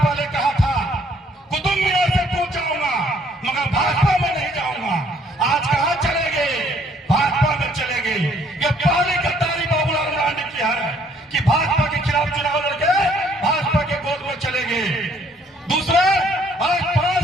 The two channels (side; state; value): both; normal; correlation 0.63